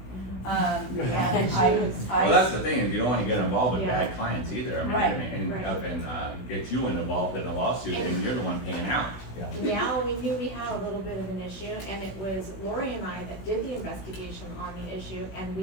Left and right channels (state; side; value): late; right; 16 ms